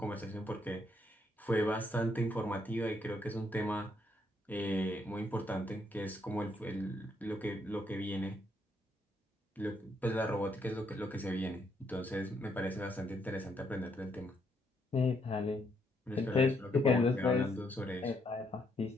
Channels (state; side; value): normal; both; correlation 0.74